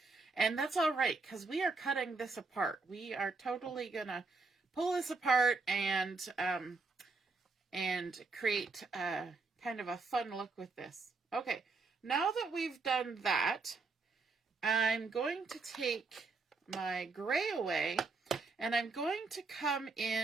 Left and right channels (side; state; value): left; quieter; 4.0 dB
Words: And that's all right, because we are cutting this apart. We are totally going to pull this apart and create kind of a fun look with this. Okay, now that we've done that, I'm going to take my gray away and I'm going to come